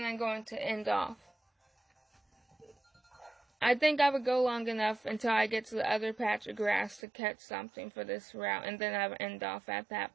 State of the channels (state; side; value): drops out; left; at 7.0 s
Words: I'm going to end off. I think I would go long enough until I get to the other patch of grass to catch something for this route, and then I would end off at